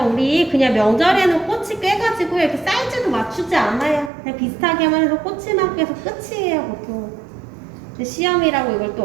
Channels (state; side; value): drops out; left; at 4.1 s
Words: 우리 그냥 명절에는 꼬치 꿰가지고 이렇게 사이즈도 맞추지 않아요. 그냥 비슷하게만 해서 꼬치만 꿰서 끝이에요, 보통. 근데 시험이라고 이걸